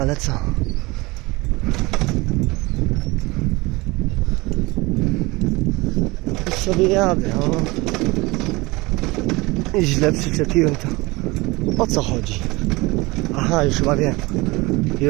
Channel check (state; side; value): quieter; left; 23.1 dB